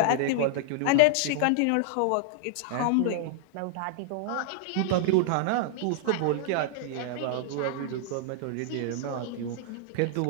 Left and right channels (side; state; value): both; different; correlation 0.00